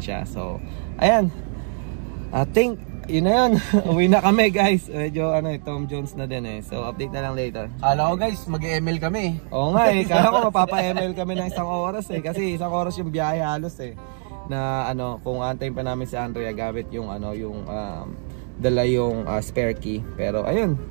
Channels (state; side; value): silent; left; 55 dB below the other